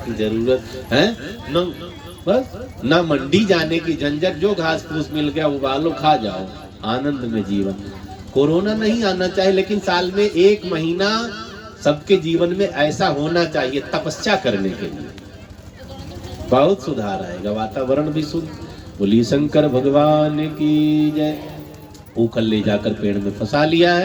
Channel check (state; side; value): identical; both; correlation 1.00